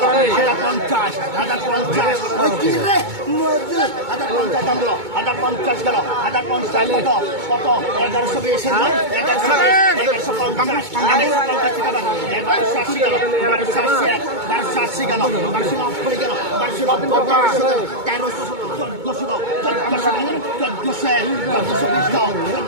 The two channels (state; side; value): late; left; 2.2 ms